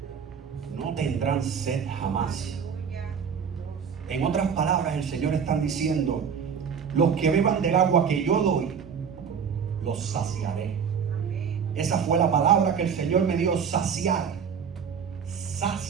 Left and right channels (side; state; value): left; quieter; 6.9 dB